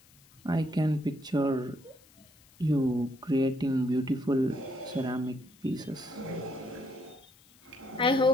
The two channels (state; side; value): noise; left; hiss, 28 dB below the sound